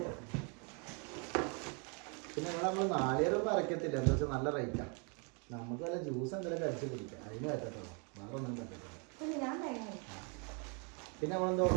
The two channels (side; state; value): left; quieter; 35.3 dB